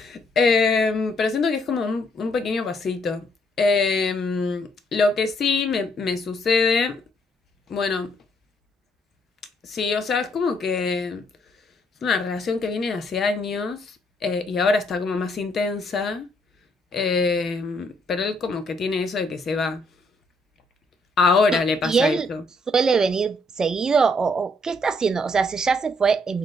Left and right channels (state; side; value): normal; both; correlation 0.70